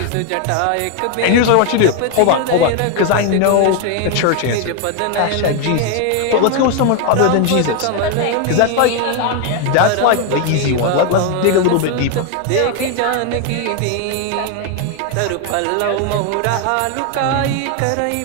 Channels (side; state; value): both; different; correlation 0.01